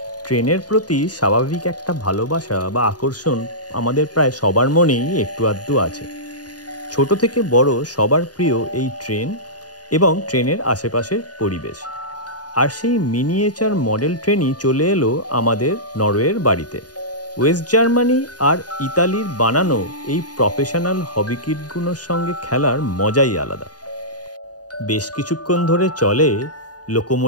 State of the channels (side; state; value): right; late; 0.69 ms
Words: ট্রেনের প্রতি স্বাভাবিক একটা ভালোবাসা বা আকর্ষণ আমাদের প্রায় সবার মনেই একটু আধটু আছে। ছোট থেকে বড় সবার প্রিয় এই ট্রেন এবং ট্রেনের আশেপাশের পরিবেশ। আর সেই মিনিয়েচার মডেল ট্রেনই চলে এলো আমাদের নরওয়ের বাড়িতে। ওয়েস্ট জার্মানি আর ইতালির বানানো এই প্রফেশনাল হবি কিটগুলোর সঙ্গে খেলার মজাই আলাদা। বেশ কিছুক্ষণ ধরে চলে